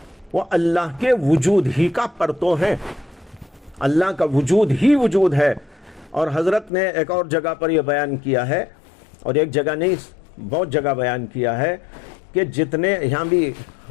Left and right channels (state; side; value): drops out; right; at 6.7 s